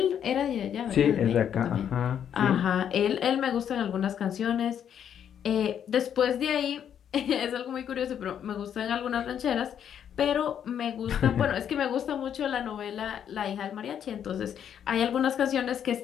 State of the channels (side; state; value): right; quieter; 9.0 dB